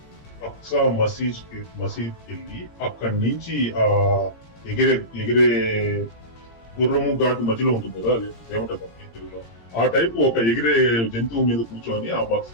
అక్సా మసీద్ వెళ్ళి అక్కడి నుంచి ఆ ఎగిరే గుర్రము ఘాటు మధ్యలో ఉంటుంది కదా, అది ఏమంటుంది తెలుగులో, ఆ టైప్ ఒక ఎగిరే జంతువు మీద కూర్చొని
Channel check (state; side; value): late; right; 17 ms